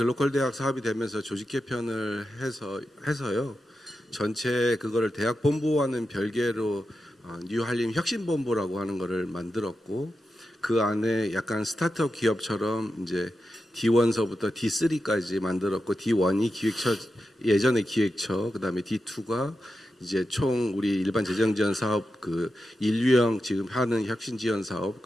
대학 사업이 되면서 조직 개편을 해서요. 전체 그거를 대학 본부와는 별개로 뉴 한림 혁신본부라고 하는 거를 만들었고 그 안에 약간 스타트업 기업처럼 이제 D1서부터 D3까지 만들었고 D1이 기획처 예전의 기획처 그다음에 D2가 이제 총 우리 일반 재정 지원 사업 그 1유형 지금 하는 혁신 지원 사업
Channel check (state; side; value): normal; both; correlation 0.89